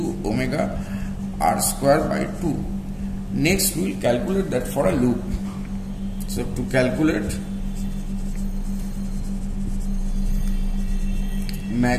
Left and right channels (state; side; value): identical; both; correlation 1.00